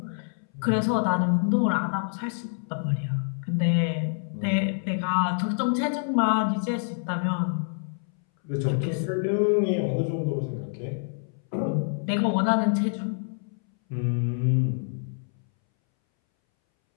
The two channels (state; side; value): silent; right; 60 dB below the other